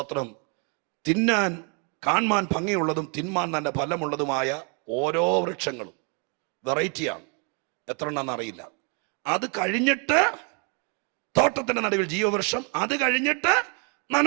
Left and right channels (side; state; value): left; quieter; 35.3 dB